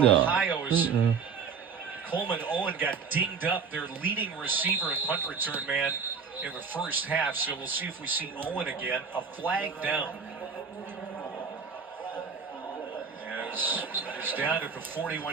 Coleman Owen got dinged up, their leading receiver and punt return man in the first half. So we'll see if we see Owen again. A flag down. As he's down at the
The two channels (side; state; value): left; quieter; 5.8 dB